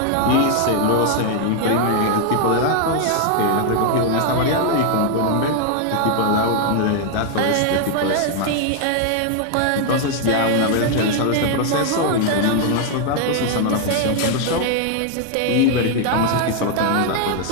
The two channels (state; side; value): different; both; correlation 0.00